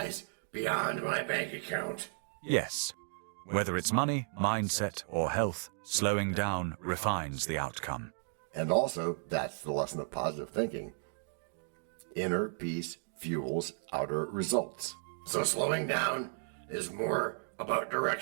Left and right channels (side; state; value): left; silent; digital silence